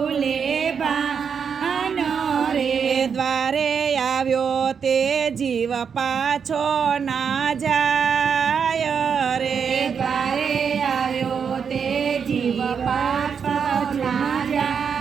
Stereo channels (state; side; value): quieter; left; 6.7 dB